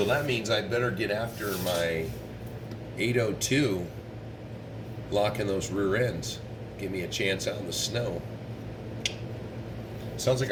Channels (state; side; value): identical; both; correlation 1.00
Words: that means I better get after my 802, locking those rear ends. Give me a chance out in the snow. Sounds like